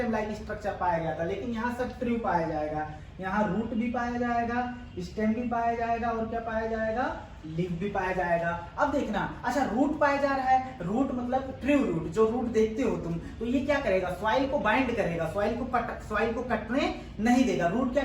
like structure पाया गया था। लेकिन यहाँ सब ट्रू पाया जाएगा। यहाँ रूट भी पाया जाएगा, स्टेम भी पाया जाएगा और क्या पाया जाएगा? लीफ भी पाया जाएगा। अब देखना, अच्छा रूट पाया जा रहा है, रूट मतलब ट्रू रूट, जो रूट देखते हो तुम, तो ये क्या करेगा? सॉइल को बाइंड करेगा, सॉइल को कटने नहीं देगा। रूट क्या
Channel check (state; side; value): identical; both; correlation 1.00